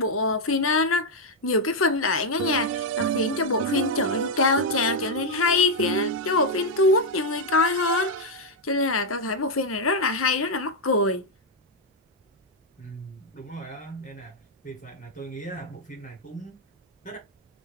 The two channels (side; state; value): both; normal; correlation 0.00